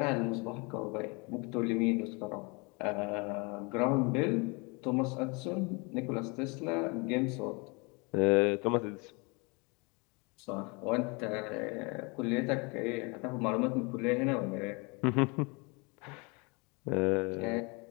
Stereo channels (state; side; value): quieter; right; 29.6 dB